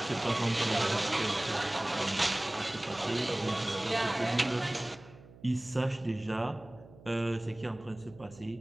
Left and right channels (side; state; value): right; noise; hum, 21 dB below the sound